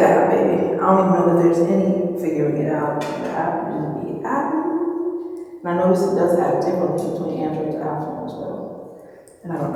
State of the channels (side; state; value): both; identical; correlation 1.00